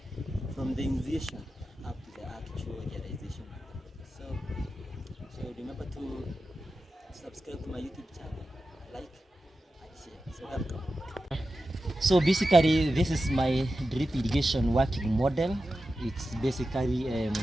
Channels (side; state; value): both; normal; correlation 0.92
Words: from the initiation up to the actual realization. So remember to subscribe to my YouTube channel, like and share. So welcome. So basically this is my drip irrigation working model. It's basically